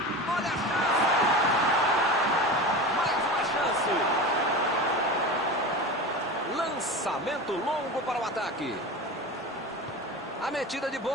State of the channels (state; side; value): normal; both; correlation 0.29